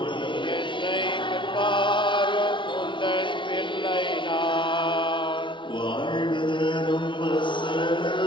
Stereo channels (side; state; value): right; late; 0.24 ms